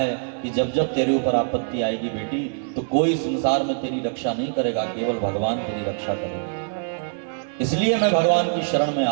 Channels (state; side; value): silent; left; digital silence